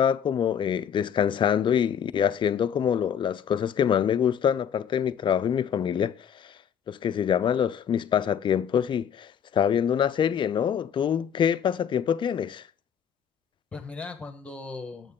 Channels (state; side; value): quieter; right; 8.2 dB